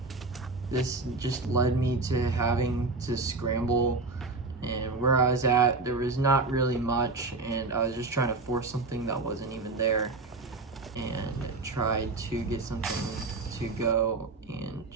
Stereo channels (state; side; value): quieter; left; 3.6 dB